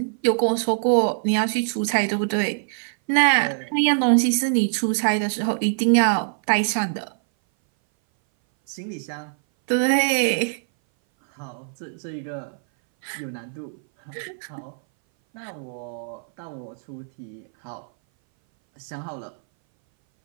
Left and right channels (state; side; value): silent; left; 59 dB below the other